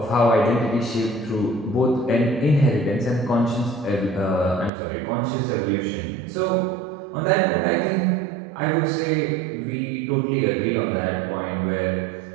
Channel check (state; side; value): drops out; left; at 4.7 s